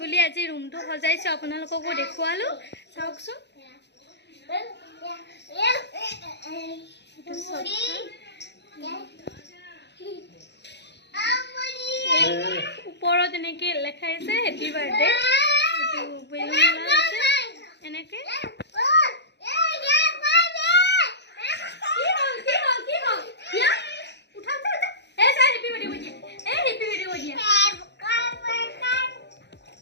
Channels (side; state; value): right; late; 0.50 ms